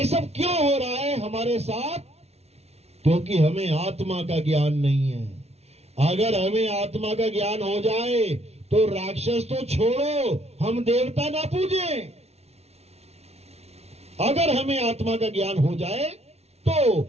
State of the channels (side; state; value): left; late; 0.31 ms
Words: सब क्यों हो रहा है हमारे साथ? क्योंकि हमें आत्मा का ज्ञान नहीं है। अगर हमें आत्मा का ज्ञान हो जाए तो राक्षस तो छोड़ो, हम देवता ना पूजें। अगर हमें आत्मा का ज्ञान हो जाए तो,